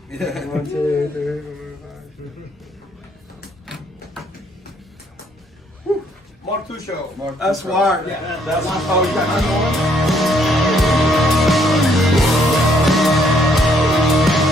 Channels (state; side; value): normal; both; correlation 0.68